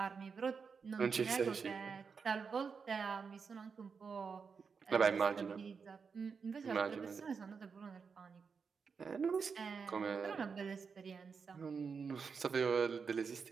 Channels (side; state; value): left; quieter; 5.6 dB